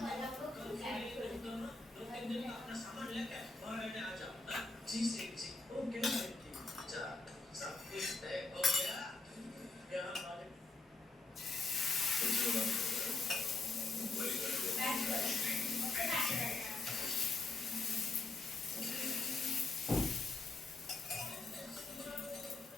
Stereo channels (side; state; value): right; quieter; 3.5 dB